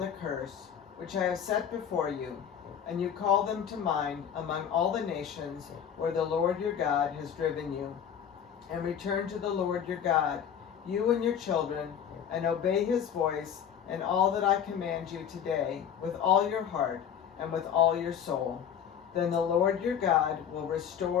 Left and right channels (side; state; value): right; quieter; 8.5 dB